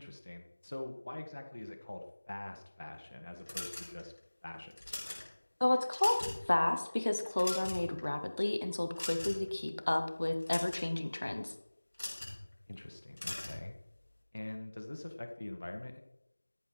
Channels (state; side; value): inverted; both; correlation -1.00